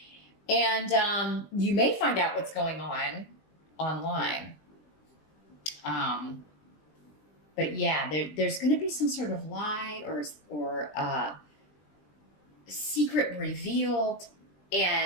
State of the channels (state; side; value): late; right; 20 ms